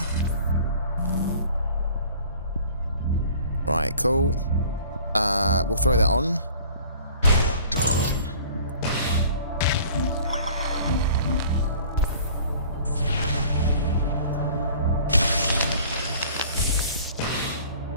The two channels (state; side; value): inverted; both; correlation -0.49